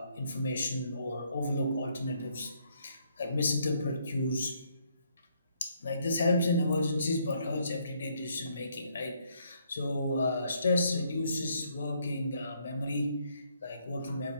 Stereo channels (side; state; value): both; inverted; correlation -0.71